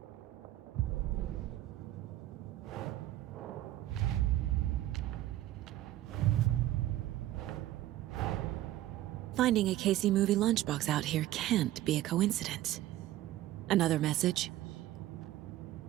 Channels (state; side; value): quieter; left; 14.5 dB